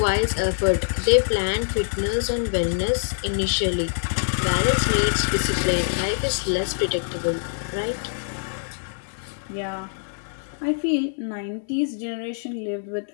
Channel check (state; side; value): silent; right; digital silence